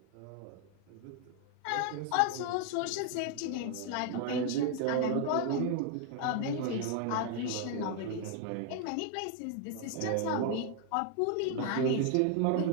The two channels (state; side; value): different; both; correlation 0.00